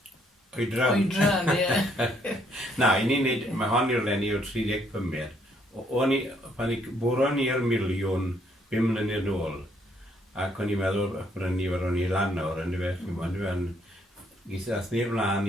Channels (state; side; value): normal; both; correlation 0.69